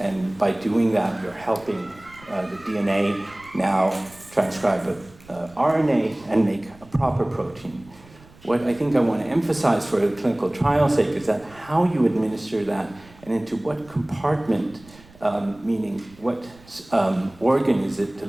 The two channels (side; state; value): right; noise; rumble, 24 dB below the sound